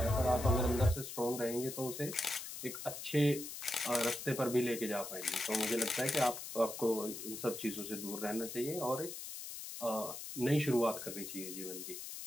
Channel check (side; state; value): left; noise; hiss, 8 dB below the sound